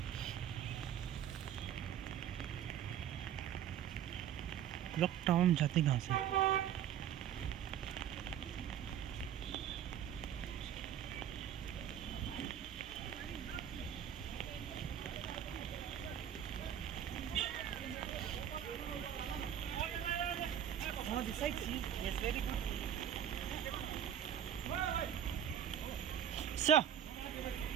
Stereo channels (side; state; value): left; quieter; 9.8 dB